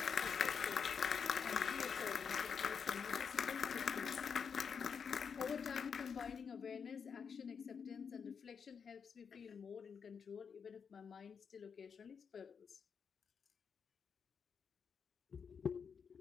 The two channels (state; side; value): quieter; right; 6.4 dB